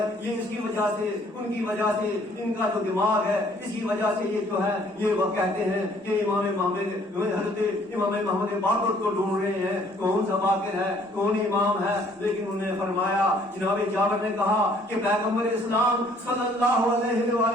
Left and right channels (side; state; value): both; normal; correlation 0.61